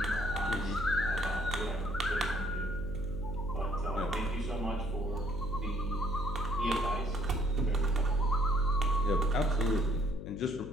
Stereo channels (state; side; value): noise; left; hum, 9 dB below the sound